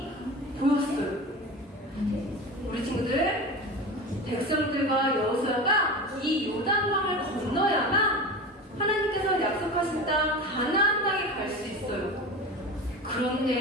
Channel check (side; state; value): both; normal; correlation 0.29